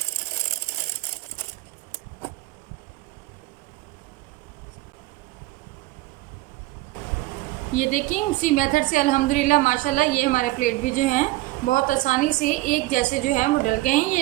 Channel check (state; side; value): quieter; left; 18.8 dB